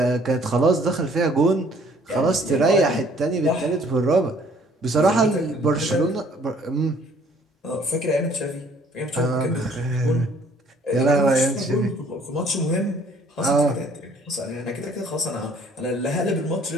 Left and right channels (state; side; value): normal; both; correlation 0.59